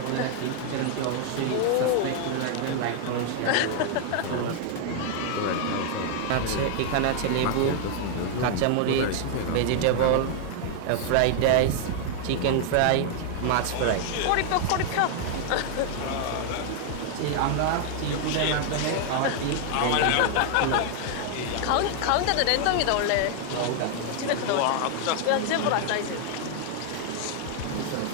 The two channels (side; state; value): both; different; correlation 0.00